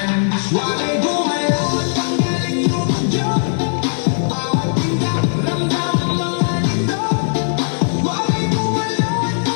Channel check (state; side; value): silent; right; digital silence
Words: Why gumalaw at tanggalin yung radyo? Bawat tingkap, ramdam ang mga nito. Why gumalaw at